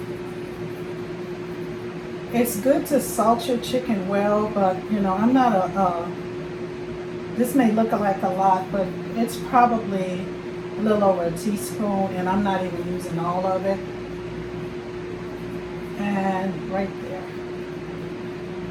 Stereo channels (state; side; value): identical; both; correlation 1.00